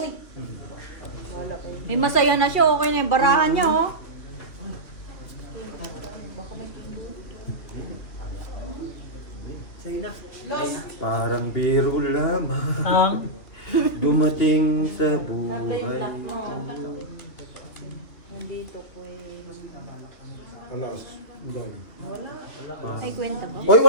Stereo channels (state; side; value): late; right; 3.1 ms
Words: Wala kayo. May masaya na siya, okay na yung barahan niya, oh. Sa'yo na. Parang biro lamang. Ang Dumating sa buhay. Nandito ko Alas. Dami. Ay, kwenta ba? Hoy,